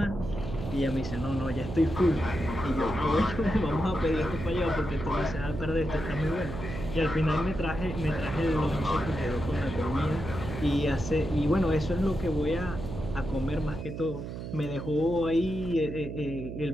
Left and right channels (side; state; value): right; noise; hum, 8 dB below the sound